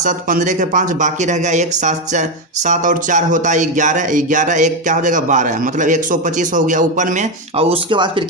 15 के 5, बाकी रह गया 1, 7 और 4 होता है 11, 11 1 क्या हो जाएगा 12, मतलब 125 हो गया ऊपर में। और उसके बाद फिर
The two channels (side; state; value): both; normal; correlation 0.09